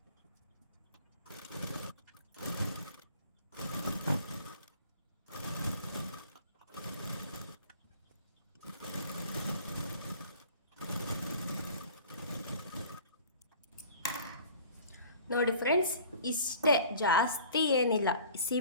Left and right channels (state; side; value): inverted; both; correlation -0.47